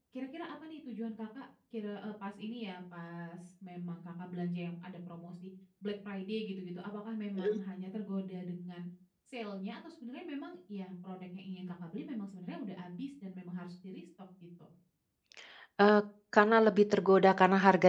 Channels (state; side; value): identical; both; correlation 1.00